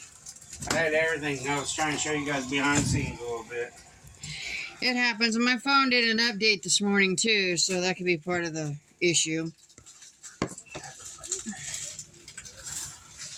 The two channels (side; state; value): both; identical; correlation 1.00